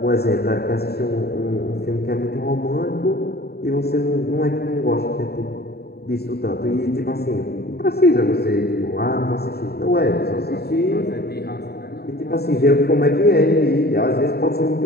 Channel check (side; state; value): right; late; 0.46 ms